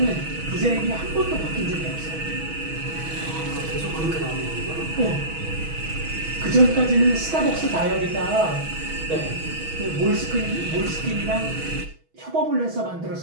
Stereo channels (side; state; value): left; late; 6.2 ms